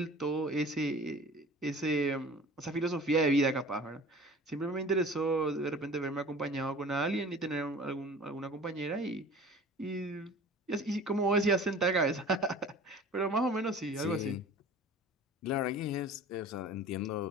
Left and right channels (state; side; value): normal; both; correlation 0.43